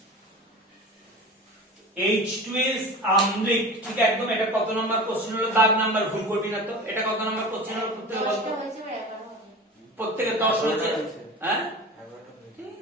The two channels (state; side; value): normal; both; correlation 0.34